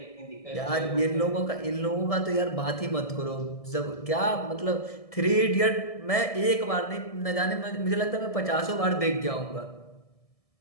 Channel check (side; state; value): right; late; 1.6 ms